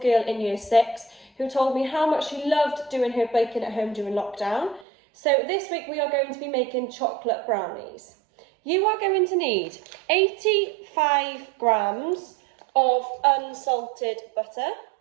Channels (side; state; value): left; drops out; at 4.9 s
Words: in year 6 who told me how much she loved doing her baking at home during lockdown. So this week we are going to be making chocolate brownies. You are going to need 85 grams of unsalted butter,